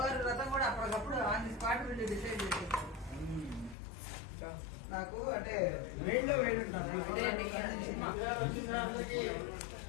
వ్రతం కూడా అప్పటికప్పుడు ఆన్ ది స్పాట్ నుండి డిసైడ్ చేసేసాం. నాకు అంటే వేడిలో వేడి ఉంటాను.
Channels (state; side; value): drops out; right; at 3.8 s